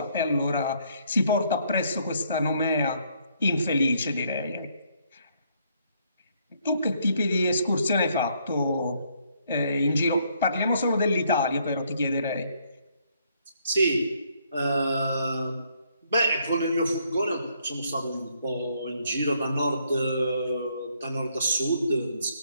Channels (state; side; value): inverted; both; correlation -0.69